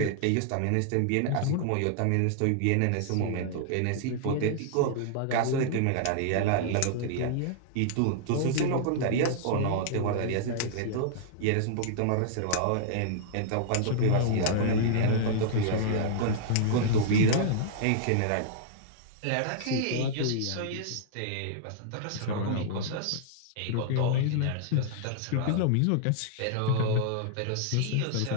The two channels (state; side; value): different; both; correlation -0.01